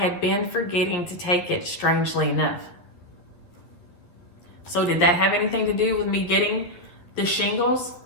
been forgetting to take it, strangely enough. So did that have anything to do with me getting the shingles?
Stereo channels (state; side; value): late; right; 11 ms